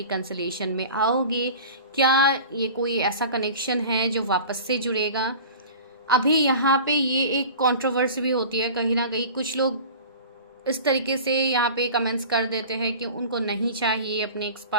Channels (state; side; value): inverted; both; correlation -0.38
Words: में आओगे? क्या ये कोई ऐसा कनेक्शन है जो वापस से जुड़ेगा? अभी यहाँ पे ये एक कंट्रोवर्सी भी होती है कहीं ना कहीं। कुछ लोग इस तरीके से यहाँ पे कमेंट्स कर देते हैं कि उनको नहीं चाहिए अपने एक्स